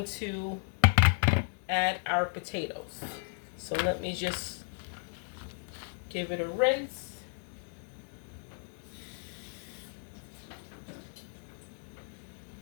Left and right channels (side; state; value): right; silent; 55 dB below the other